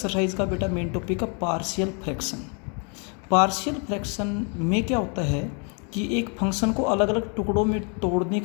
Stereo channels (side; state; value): right; quieter; 36.9 dB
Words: का बेटा मेन टॉपिक है पार्शियल फ्रैक्शन। पार्शियल फ्रैक्शन में क्या होता है कि एक फंक्शन को अलग अलग टुकड़ों में तोड़ने